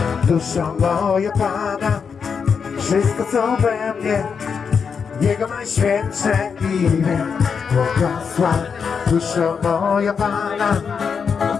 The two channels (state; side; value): quieter; right; 6.2 dB